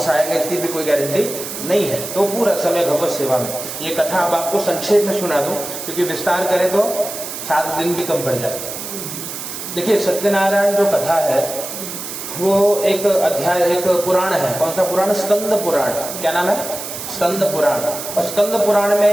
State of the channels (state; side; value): noise; right; hiss, 8 dB below the sound